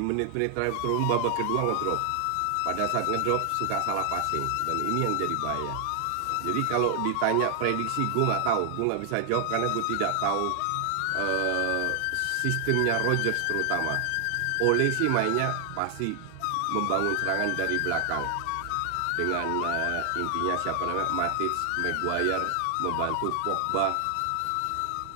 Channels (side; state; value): both; different; correlation 0.00